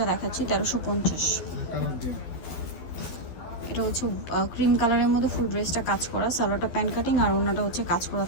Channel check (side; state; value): right; late; 12 ms